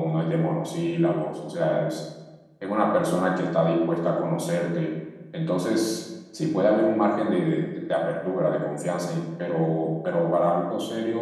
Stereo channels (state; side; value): identical; both; correlation 1.00